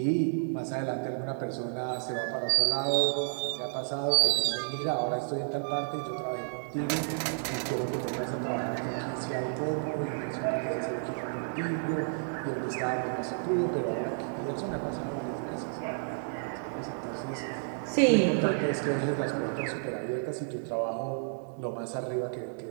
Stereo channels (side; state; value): left; silent; digital silence